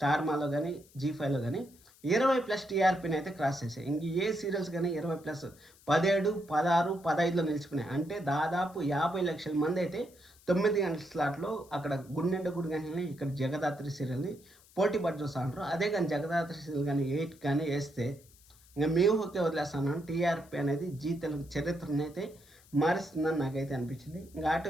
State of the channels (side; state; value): left; noise; hiss, 26 dB below the sound